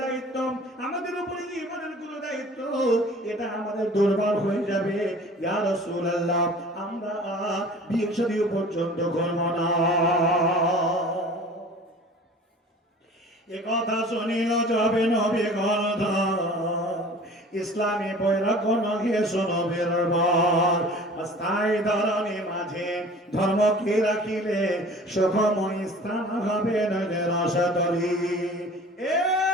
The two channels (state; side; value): normal; both; correlation 0.44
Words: দায়িত্ব আমাদের উপরে যে ইমানের গুলো দায়িত্ব এটা আমাদের দুর্বল হয়ে যাবে ইয়া রাসূলুল্লাহ আমরা বিয়ে শাদী পর্যন্ত করব না এ কথা শুনিল যাবে নবী গর্ধ ইসলামী বৈরাগ্য হে শোনবের বর অস্থায়ী ধরনী মাঝে ধর্মকে রাখিলে সুখময় স্থান হবে নইলে রসতরি এ